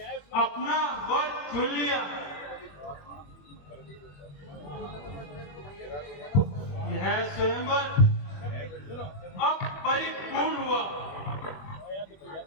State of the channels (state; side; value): late; right; 21 ms